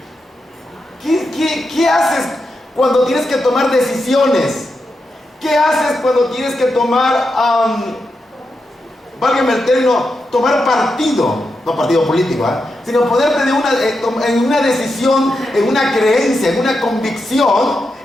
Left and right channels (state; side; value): normal; both; correlation 0.86